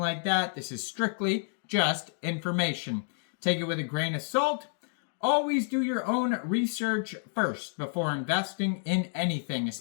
that. This is strictly just information. Take it with a grain of salt. Always do your own research first before investing in anything,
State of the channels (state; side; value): silent; right; digital silence